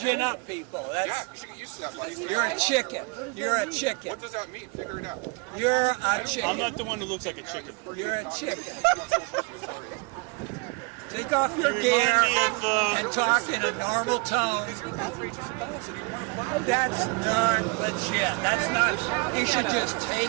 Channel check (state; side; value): quieter; left; 30.4 dB